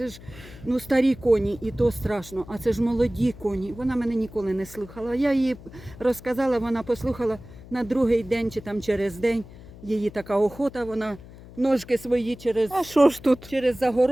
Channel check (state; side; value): noise; left; hum, 18 dB below the sound